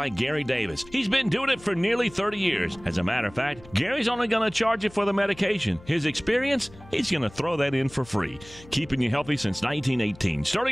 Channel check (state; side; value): noise; left; hum, 21 dB below the sound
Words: Gary Davis. He's been doing it for nearly 30 years. As a matter of fact, Gary's only going to charge you for the medication. His experience, he's going to throw that in for free. Keeping you healthy since 1918.